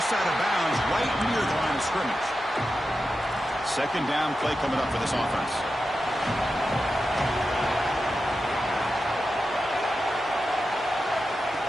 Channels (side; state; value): both; normal; correlation 0.90